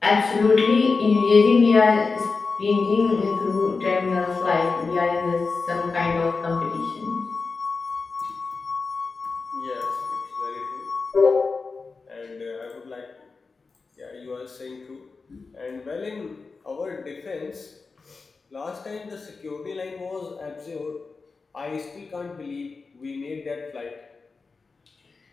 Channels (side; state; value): right; quieter; 4.4 dB